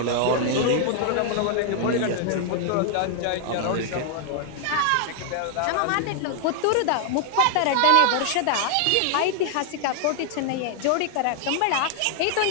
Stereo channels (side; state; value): both; different; correlation 0.00